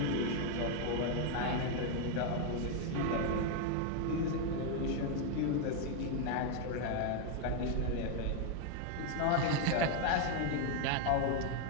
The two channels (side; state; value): both; different; correlation 0.01